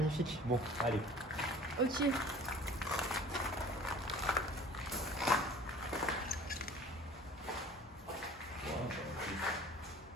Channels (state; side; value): normal; both; correlation 0.47